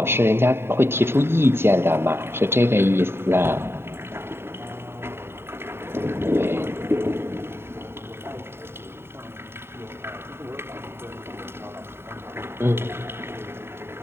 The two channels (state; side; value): late; left; 0.11 ms